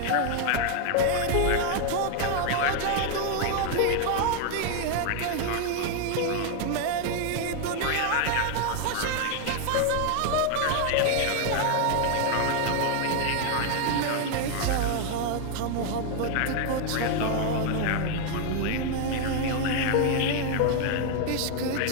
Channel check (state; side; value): different; both; correlation 0.00